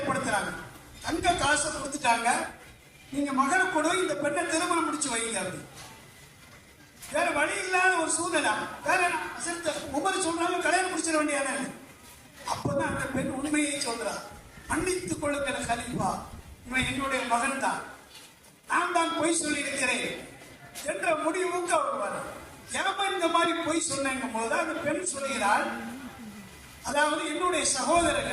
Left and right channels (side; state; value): both; identical; correlation 1.00